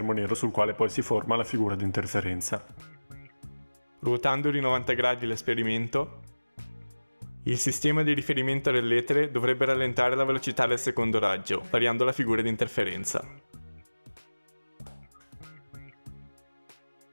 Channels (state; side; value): inverted; both; correlation -1.00